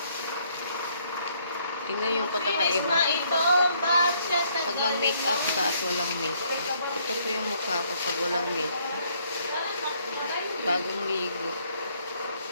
Tingnan yung pagkakaiba. Pag mag-make up ka at walang make up. Ito po yung mukha ko pag walang make up. Bagong ligo.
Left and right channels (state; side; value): inverted; both; correlation -0.68